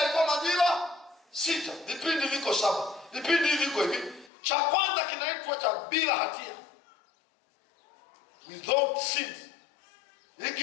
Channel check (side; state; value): right; drops out; at 4.3 s